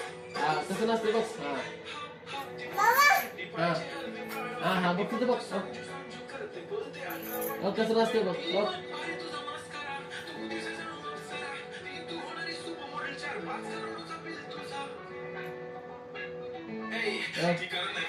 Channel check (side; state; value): both; identical; correlation 1.00